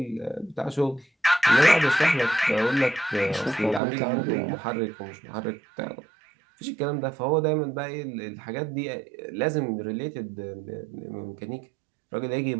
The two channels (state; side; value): drops out; left; at 3.8 s